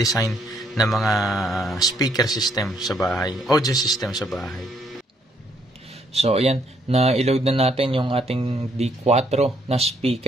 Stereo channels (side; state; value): both; normal; correlation 0.70